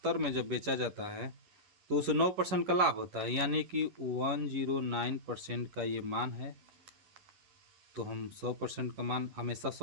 में जब बेचा जाता है तो उसे 9% का लाभ होता है, यानी कि 109% का ये मान है। तो हम 100% का मान हमेशा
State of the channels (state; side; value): late; left; 11 ms